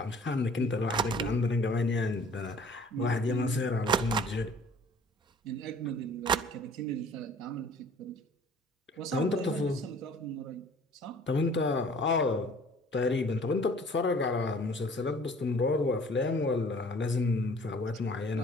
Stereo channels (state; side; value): normal; both; correlation 0.52